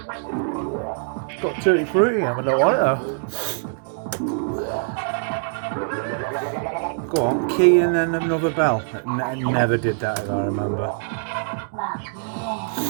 Got tutti frutti, I don't want it though. Go on, key and then another bell. I never did that if I remember.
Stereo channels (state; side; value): silent; left; digital silence